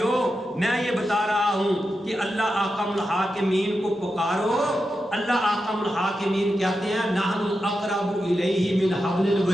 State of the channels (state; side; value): normal; both; correlation 0.89